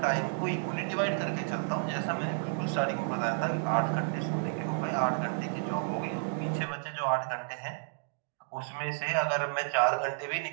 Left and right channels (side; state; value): left; silent; digital silence